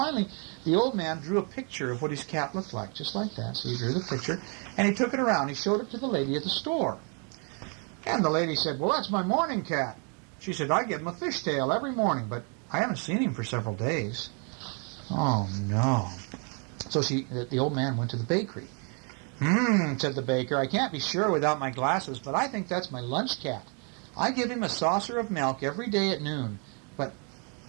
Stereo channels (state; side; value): quieter; left; 37.7 dB